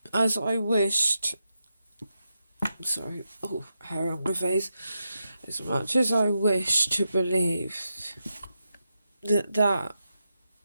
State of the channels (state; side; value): inverted; both; correlation -0.86